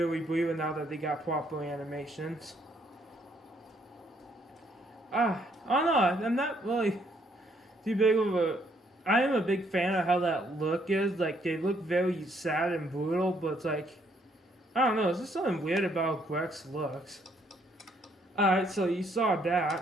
we breathe now that they got proper animations. I don't know, I'm not really too big of a... I am a big fan of how that look is. Like, they look very sad and brutal, but it's like... I don't know, there's just something weird about how Grex looks. Alright, so you saw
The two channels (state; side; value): normal; both; correlation 0.69